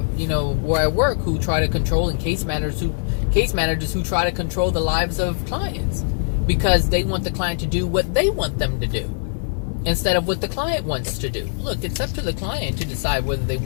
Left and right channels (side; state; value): right; silent; 60 dB below the other